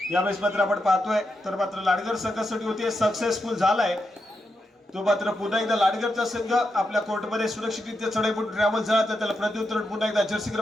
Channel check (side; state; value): both; normal; correlation 0.85